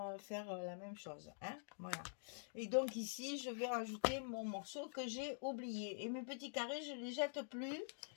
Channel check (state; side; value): silent; right; digital silence